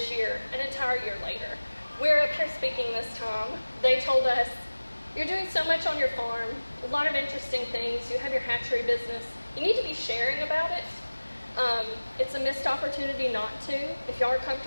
year, an entire year later. We're up here speaking this time. They told us, you're doing so much on your farm, a lot of interesting things. You have your hatchery business. You need to be sharing about it. It's a missed opportunity not to. If y'all are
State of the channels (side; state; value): both; inverted; correlation -1.00